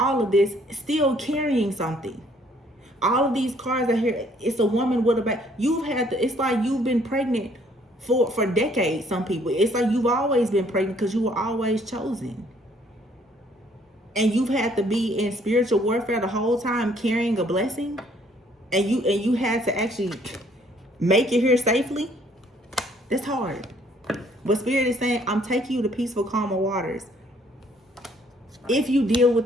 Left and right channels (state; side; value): normal; both; correlation 0.63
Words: of this still carrying something. All of these cards are here. It's a woman with a baby. It's like you've been pregnant for decades. Some people, it's like you've always been pregnant because you were always chosen. And you've had to be in spiritual warfare the whole time carrying a blessing. And you had to actually make it here safely. That's hard. But Spirit is saying, I'm taking you to peaceful, calmer waters. If you deal with